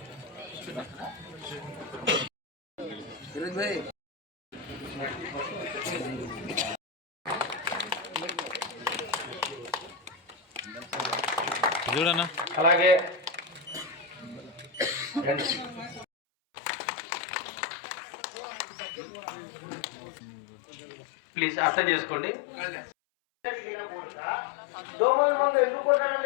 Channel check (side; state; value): right; drops out; at 16.1 s